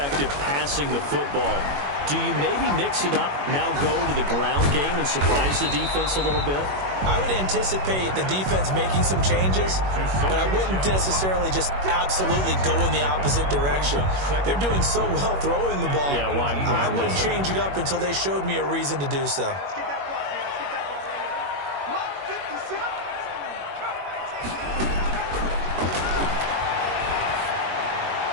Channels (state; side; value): late; left; 21 ms